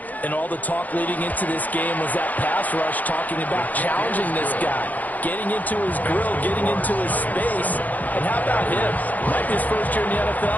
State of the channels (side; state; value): right; late; 0.080 ms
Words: And all the talk leading into this game was that pass rush talking about challenging this guy, getting into his grill, getting into his space. And how about him? Might be his first year in the